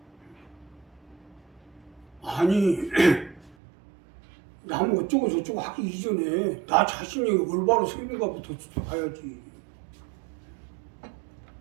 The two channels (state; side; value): drops out; left; at 3.6 s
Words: 아니 남 어쩌고 저쩌고 하기 이전에 나 자신이 올바로 서 있는가부터 봐야지.